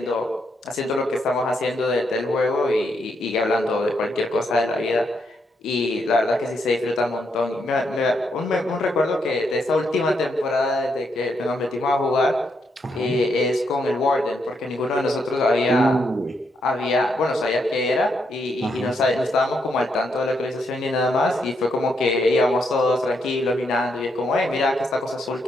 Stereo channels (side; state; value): both; normal; correlation 0.78